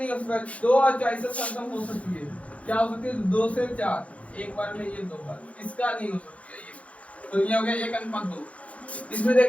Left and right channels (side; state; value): right; late; 0.064 ms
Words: हो सकता, 2 और 4 से सरलतम हो सकती है। क्या हो सकती है? 2 से 4 एक बार में, ये 2 बार, इसका नहीं हो सकती है ये। तो ये हो गया 1:2। इसमें